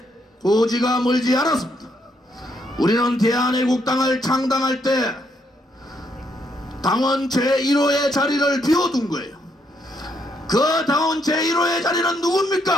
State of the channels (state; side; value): normal; both; correlation 0.74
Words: 고지가 멀지 않았습니다. 우리는 대한애국당을 창당할 때 당원 제1호의 자리를 비워둔 거예요. 그 당원 제1호의 자리는